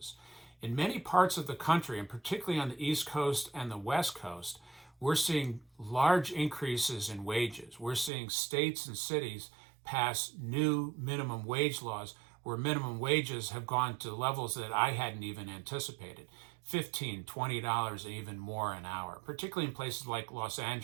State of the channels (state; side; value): drops out; left; at 8.1 s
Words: In many parts of the country, and particularly on the East Coast and the West Coast, we're seeing large increases in wages. We're seeing states and cities pass new minimum wage laws where minimum wages have gone to levels that I hadn't even anticipated. $15, $20, and even more an hour, particularly in places like Los